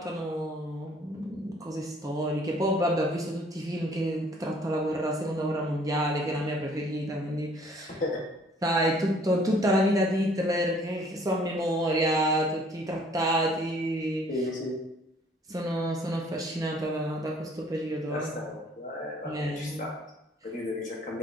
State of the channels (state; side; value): normal; both; correlation 0.58